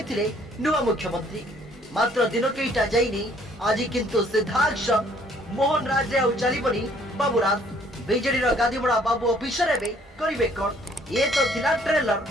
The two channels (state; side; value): normal; both; correlation 0.61